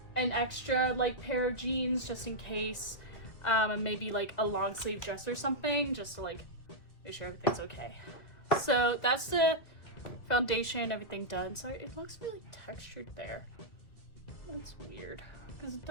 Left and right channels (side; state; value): right; late; 2.2 ms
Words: an extra like pair of jeans just in case, and maybe like a long sleeve dress or something just to like make sure everything's okay. So that's the foundation, everything done. So it looks really textured there. That's weird because it